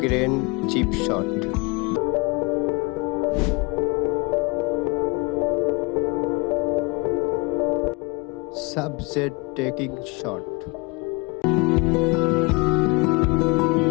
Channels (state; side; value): quieter; right; 27.6 dB